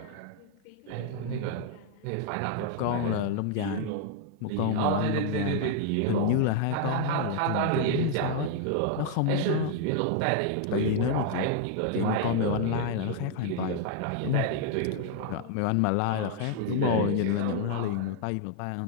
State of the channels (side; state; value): both; different; correlation 0.00